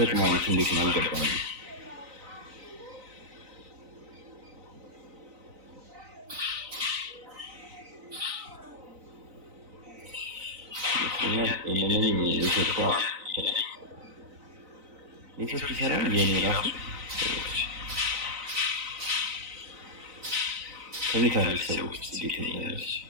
ማለት እንዴት ነው አልገባኝም። ይሄንን ኔትወርክ ይሰራል የኔ ራሱ ከሚካኤል ሰዎች እንዴት ነው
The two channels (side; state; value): left; late; 3.9 ms